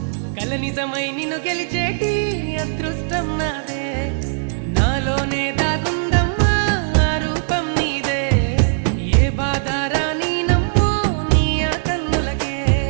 కల నిజమై నిన్ను గెలిచేటి అదృష్టం నాదే నాలోనే దాగుందమ్మా ఆ రూపం నీదే ఏ బాధ రాని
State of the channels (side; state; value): left; silent; digital silence